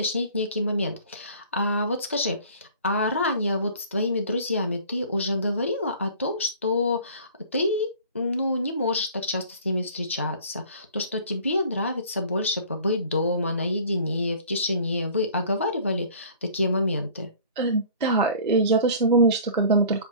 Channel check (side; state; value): both; inverted; correlation -0.48